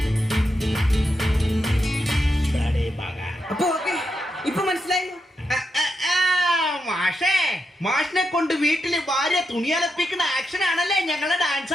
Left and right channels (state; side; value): normal; both; correlation 0.85